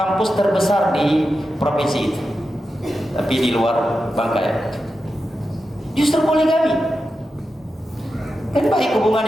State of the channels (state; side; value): normal; both; correlation 0.90